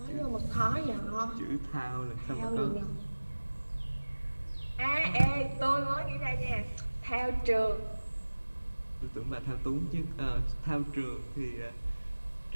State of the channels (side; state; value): both; inverted; correlation -1.00